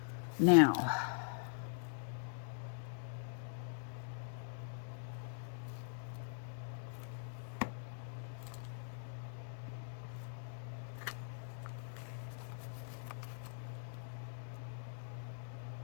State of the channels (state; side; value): silent; right; digital silence